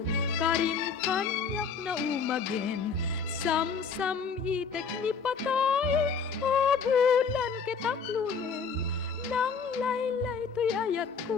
karim kanyak na umagen, sam-sam itek ni patay, o bulan ketaklunen. Nang laylay to'y ayat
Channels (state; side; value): quieter; right; 5.6 dB